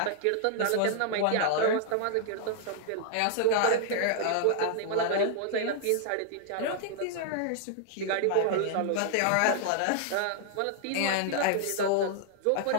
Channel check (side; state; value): both; different; correlation -0.01